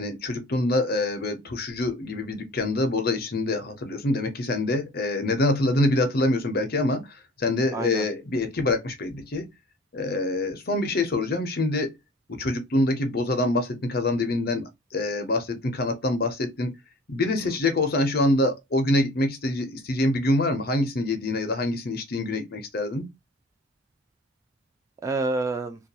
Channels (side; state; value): both; normal; correlation 0.46